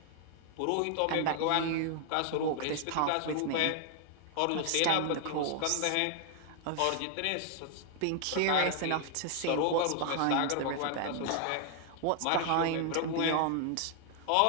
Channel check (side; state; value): both; different; correlation 0.00